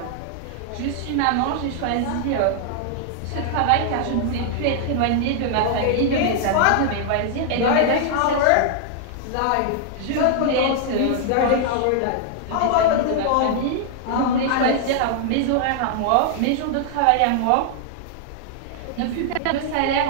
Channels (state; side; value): different; both; correlation -0.01